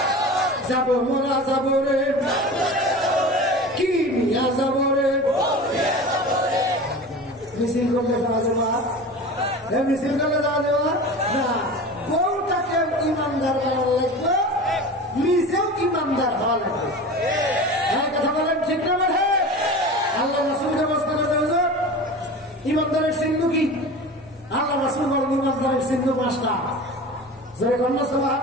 যাবো মোরা যাবো রে, কি নিয়ে যাবো রে? মিছিল করলে যাওয়া যাবা? মিছিল করলে যাওয়া যাবা না। বউটাকে ইমানদার হওয়া লাগবে, নিজেও ইমানদার হওয়া লাগবে। কথা বলেন ঠিক না? মানে আল্লাহ রাসূলকে প্রশ্ন করতে হবে ইমানদারের চিহ্ন কি? আল্লাহ রাসূল বলেন ইমানদারের চিহ্ন 5টা। জয় কন্যা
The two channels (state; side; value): normal; both; correlation 0.33